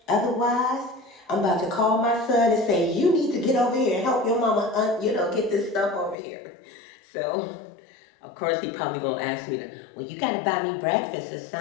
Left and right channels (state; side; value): drops out; right; at 6.2 s